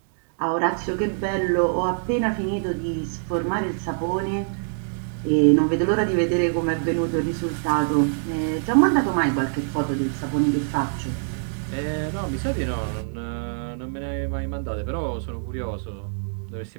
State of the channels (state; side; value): silent; left; digital silence